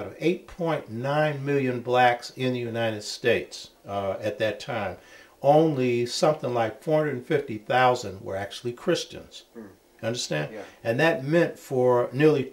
of 8.9 million blacks in the United States at that time, only something like 450,000 were actually Christians. Understand? Yeah. And that meant for nearly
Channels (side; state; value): both; identical; correlation 1.00